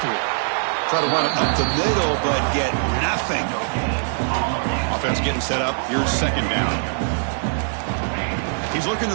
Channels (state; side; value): silent; left; digital silence